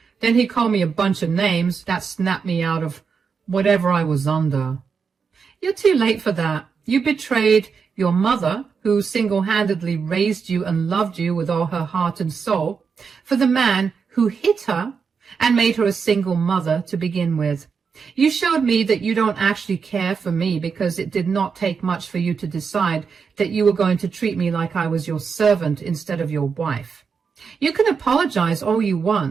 Then he called me a bunch of names that snapped me out of whatever I was under. You're too late for that. You betrayed your mother, who single-handedly raised you and loved you with all her heart and soul, for the man who hit her and made her a single mother to begin with. You showed me that you don't actually care for me because it did not take much for you to decide that you were going to treat me like I was your servant instead of your wife. You can apologize all you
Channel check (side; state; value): left; quieter; 5.8 dB